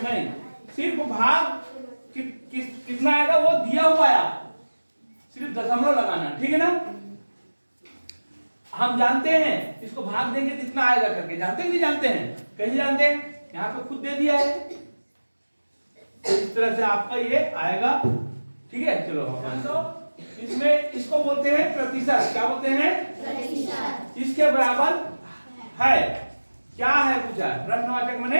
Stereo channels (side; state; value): both; inverted; correlation -1.00